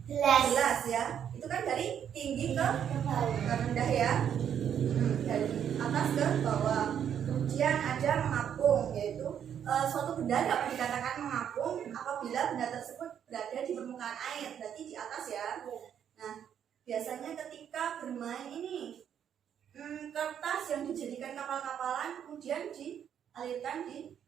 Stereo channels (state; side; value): quieter; left; 8.9 dB